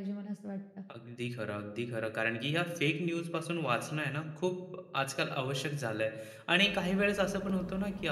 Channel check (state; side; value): identical; both; correlation 1.00